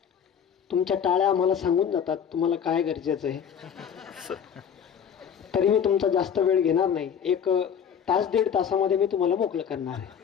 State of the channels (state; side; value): quieter; right; 7.9 dB